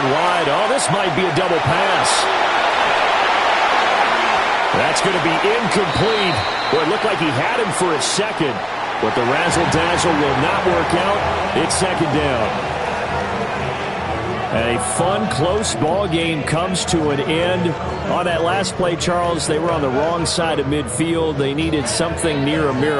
wide. Oh, this might be a double pass. That's going to be incomplete. Well, it looked like he had him for a second, but the razzle-dazzle will not work out. It's 2nd down. A fun, close ball game comes to an end. On that last play, Charles, they were on the wrong side of midfield. They needed something near a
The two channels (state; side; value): identical; both; correlation 1.00